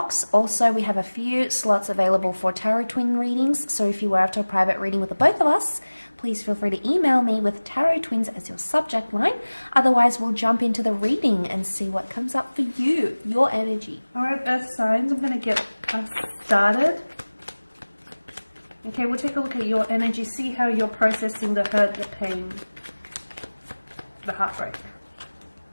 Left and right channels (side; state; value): both; inverted; correlation -1.00